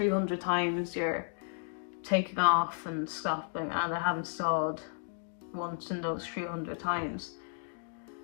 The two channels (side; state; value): right; silent; digital silence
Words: times you're taking off and stopping, and I haven't stalled once in those 300 times.